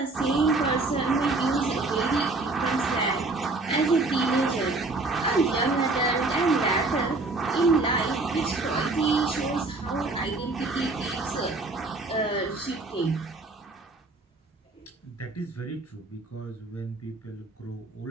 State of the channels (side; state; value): left; quieter; 3.3 dB